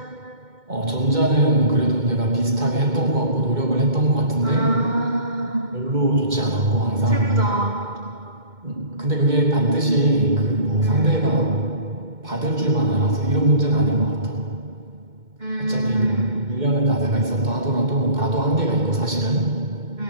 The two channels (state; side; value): late; left; 2.2 ms